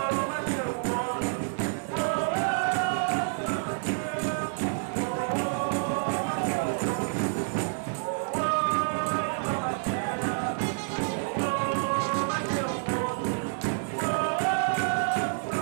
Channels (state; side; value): silent; left; digital silence